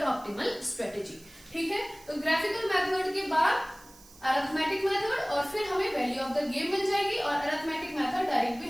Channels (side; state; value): right; noise; hiss, 23 dB below the sound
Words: ऑप्टिमल स्ट्रेटेजी, ठीक है। तो ग्राफिकल मेथड के बाद अरिथमेटिक मेथड और फिर हमें वैल्यू ऑफ द गेम मिल जाएगी और अरिथमेटिक मेथड डायरेक्ट भी